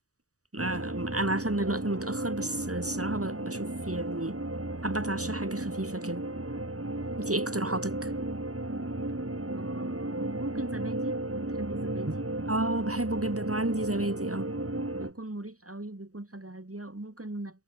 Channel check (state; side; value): late; left; 0.66 ms